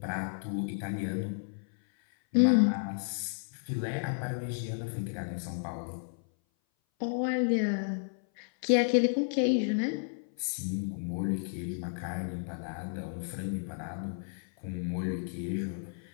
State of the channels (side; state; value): right; silent; 56 dB below the other